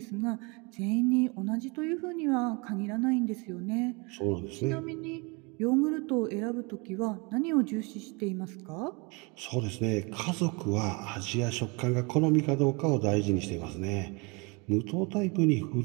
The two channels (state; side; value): quieter; left; 29.4 dB